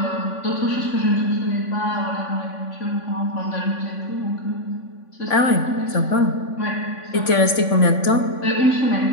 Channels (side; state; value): right; late; 3.5 ms